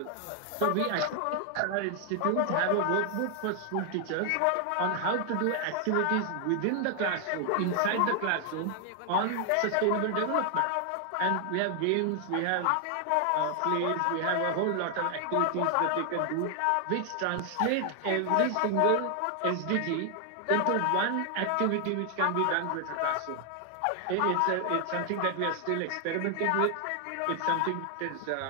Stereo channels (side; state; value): both; different; correlation 0.00